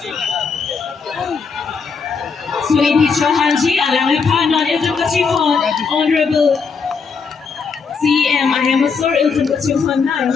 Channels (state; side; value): quieter; right; 5.3 dB